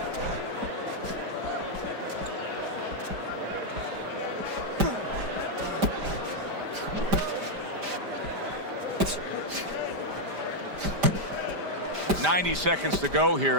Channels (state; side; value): late; left; 5.0 ms